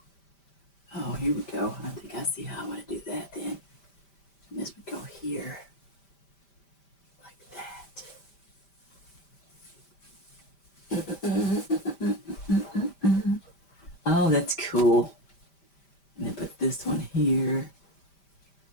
Oh, here we go. I think I see how I want to do that then. And this would go here. Oh, that's cool. And then put this one here.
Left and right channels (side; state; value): right; late; 5.1 ms